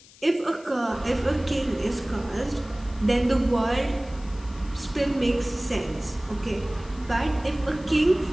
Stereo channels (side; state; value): left; noise; hiss, 24 dB below the sound